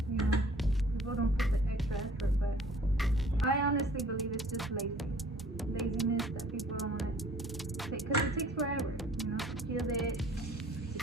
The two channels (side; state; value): both; normal; correlation 0.53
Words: you know, people don't put the extra effort, but I honestly believe it's just laziness that people don't want to take, because it takes forever, you know, to peel it,